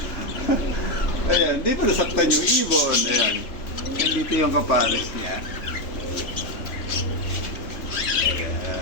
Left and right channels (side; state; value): right; late; 3.4 ms